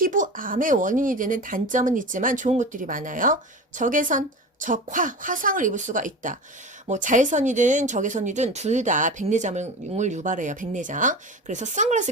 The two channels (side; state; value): both; normal; correlation 0.30